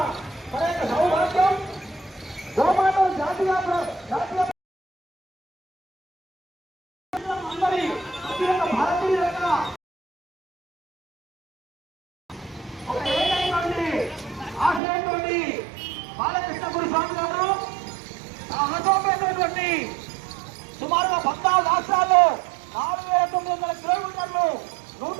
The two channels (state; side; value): drops out; left; at 14.8 s